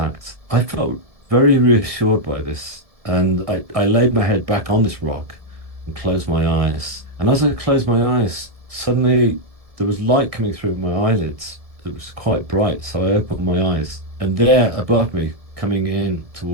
I felt very reassured by this. And I laid my head back on this rock and closed my eyes. And as I closed my eyes, suddenly there was light coming through my eyelids. It was quite bright. So I opened my eyes. And there above me, coming in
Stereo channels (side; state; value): left; late; 1.7 ms